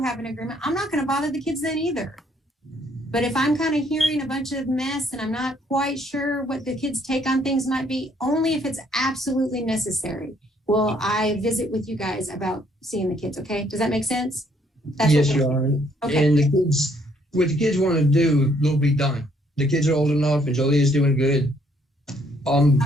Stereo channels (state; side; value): normal; both; correlation 0.67